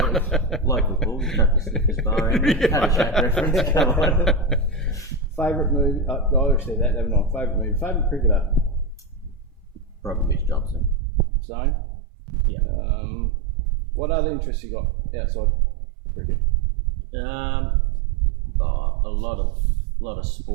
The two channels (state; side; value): drops out; left; at 11.0 s